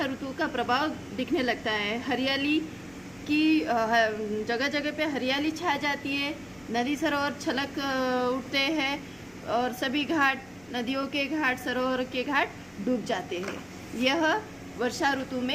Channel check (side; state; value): left; noise; rumble, 29 dB below the sound